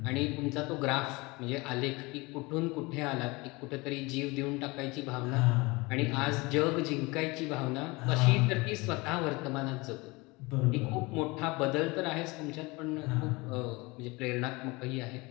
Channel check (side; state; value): right; quieter; 24.4 dB